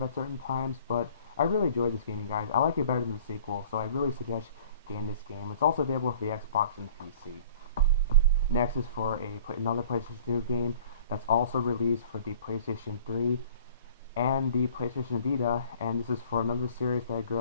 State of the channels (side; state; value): both; inverted; correlation -0.49